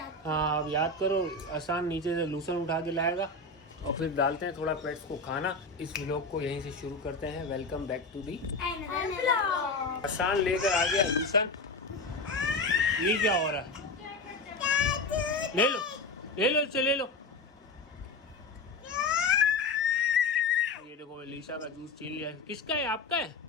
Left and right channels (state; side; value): quieter; right; 3.2 dB